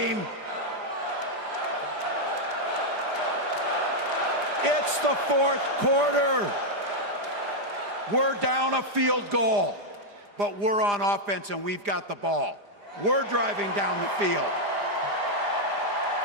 It's the fourth quarter. We're down a field goal, but we're on offense and we've got the ball. We're driving down the field.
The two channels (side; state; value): left; late; 4.9 ms